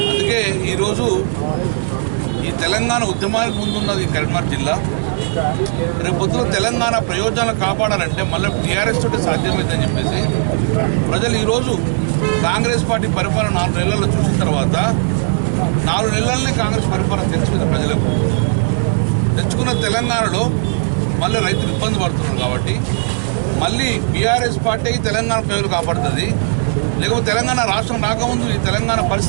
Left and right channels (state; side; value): silent; left; 65 dB below the other